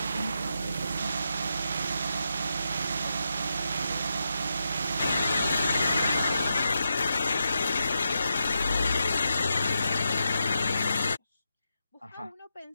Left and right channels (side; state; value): both; inverted; correlation -0.86